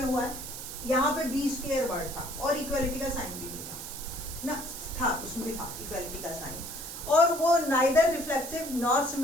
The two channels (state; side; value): noise; right; hiss, 9 dB below the sound